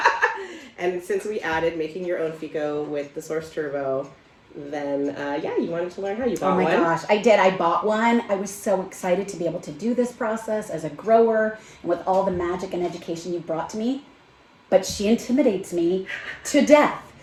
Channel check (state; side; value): identical; both; correlation 1.00